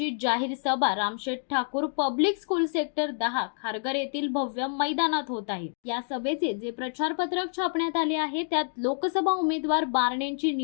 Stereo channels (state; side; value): silent; right; digital silence